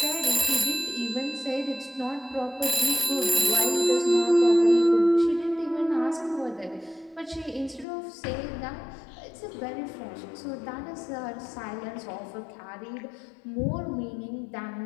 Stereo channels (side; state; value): right; drops out; at 7.9 s